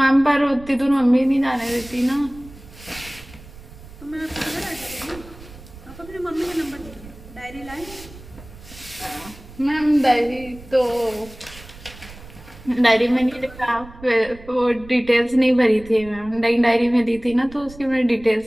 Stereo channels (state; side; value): noise; right; rumble, 19 dB below the sound